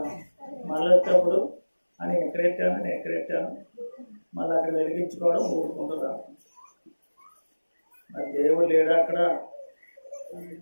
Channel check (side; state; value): both; inverted; correlation -1.00